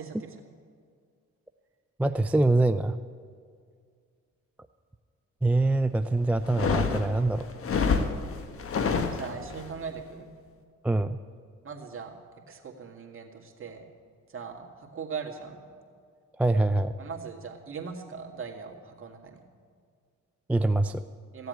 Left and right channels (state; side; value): normal; both; correlation 0.78